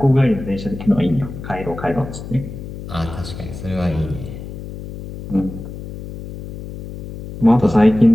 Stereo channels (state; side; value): noise; left; hum, 11 dB below the sound